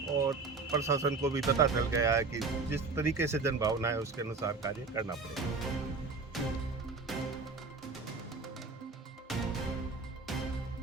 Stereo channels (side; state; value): left; quieter; 4.2 dB